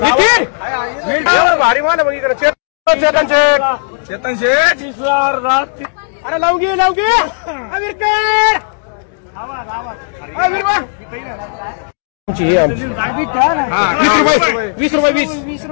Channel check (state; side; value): silent; right; digital silence